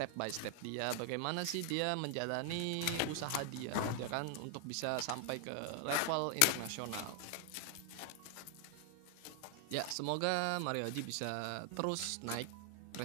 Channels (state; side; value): different; both; correlation 0.00